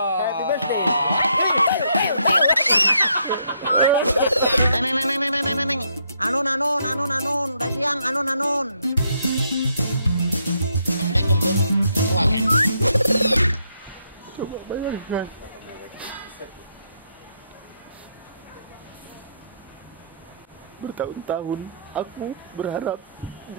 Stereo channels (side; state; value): both; inverted; correlation -0.75